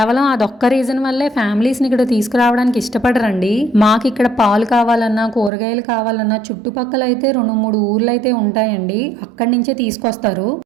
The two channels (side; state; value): left; drops out; at 5.5 s